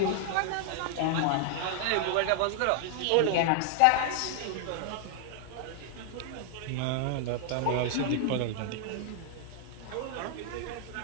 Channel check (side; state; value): both; different; correlation 0.00